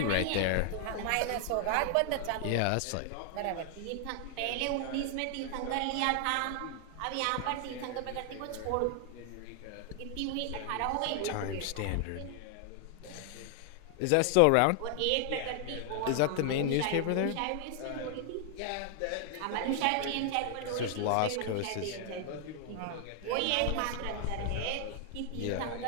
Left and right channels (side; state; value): both; different; correlation 0.00